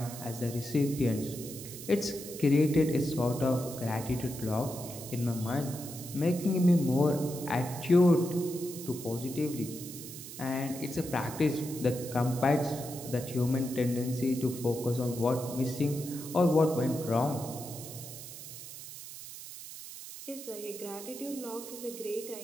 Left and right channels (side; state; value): right; noise; hiss, 12 dB below the sound